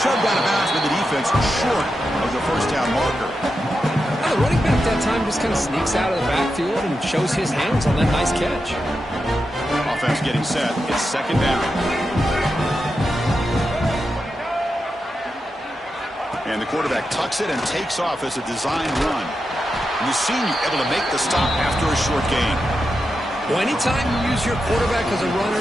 shoved out of bounds with the defense short of the 1st down marker. Now the running back that time just kind of sneaks out of the backfield and shows his hands on that nice catch. Offense getting set. It's 2nd down. And the quarterback tucks it and takes off as a design run. And the senior able to make the stop after a short gain. Well, anytime you use your quarterback as a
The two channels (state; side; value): normal; both; correlation 0.88